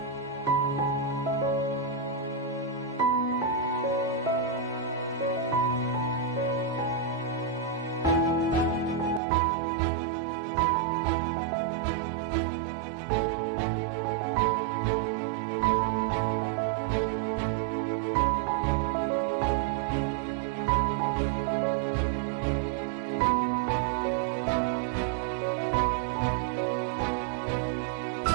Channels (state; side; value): drops out; left; at 9.2 s